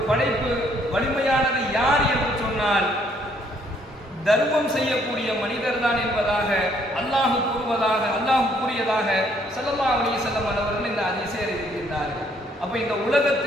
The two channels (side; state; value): both; normal; correlation 0.66